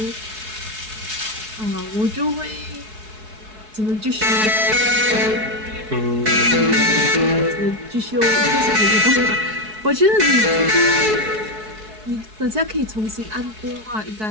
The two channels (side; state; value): left; late; 4.7 ms